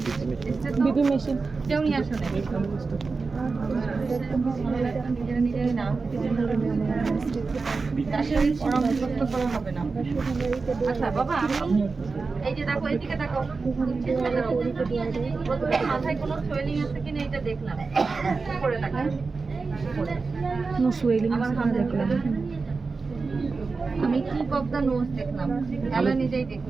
BP machine কেউ নিয়ে আসো না, নিজেরা না আসলে পরামর্শ করা হবে না। আচ্ছা বাবা, আমি এই যে দেখো এদিকে দেখো, প্রথমে মাথায় কোনো সোয়েলিং আছে কিনা এটা দেখলাম, করে দেখেন নো সুয়েলিং আমার হাত দেখলাম, আমি কি অফ দ্য নোজ দেখলাম, তাহলে নিজেই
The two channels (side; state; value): left; quieter; 4.3 dB